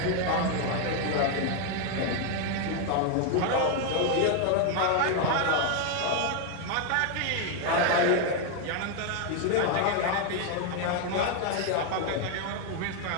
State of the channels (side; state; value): both; different; correlation 0.01